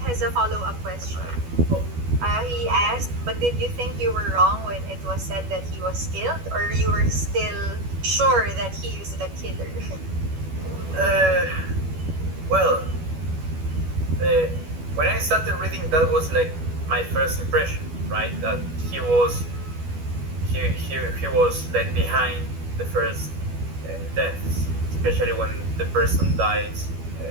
a follow-up question. He asked, but did you think you were wrong when it was said that he was killed, or you were still sure that he is the killer? Uh, well, uh, when I started reading, that was like my first impression, right? That he was like behind the first deaths, especially when the person dies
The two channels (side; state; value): left; late; 12 ms